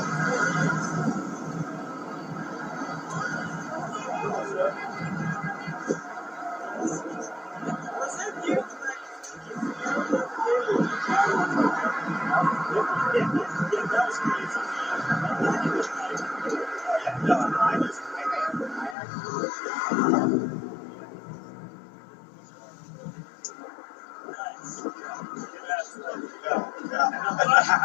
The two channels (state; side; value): drops out; right; at 18.9 s